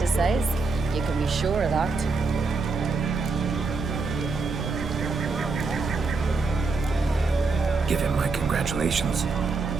size. You can be sure of that. Give him my congratulations.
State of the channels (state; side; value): quieter; left; 4.1 dB